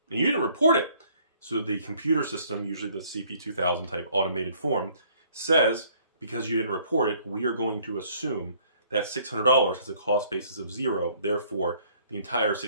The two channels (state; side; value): inverted; both; correlation -0.60